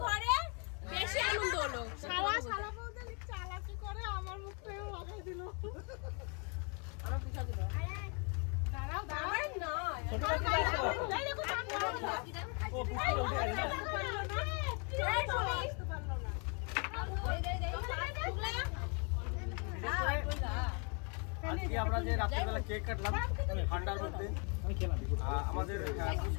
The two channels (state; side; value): quieter; right; 36.1 dB